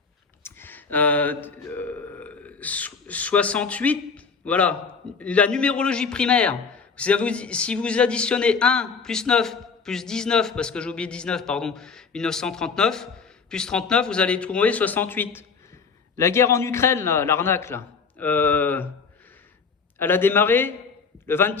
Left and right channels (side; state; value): right; quieter; 5.3 dB